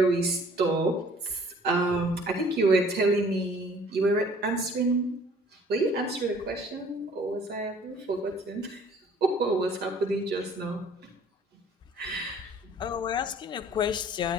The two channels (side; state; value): both; normal; correlation 0.54